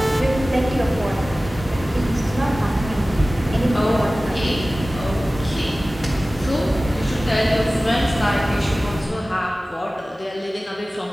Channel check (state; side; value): normal; both; correlation 0.97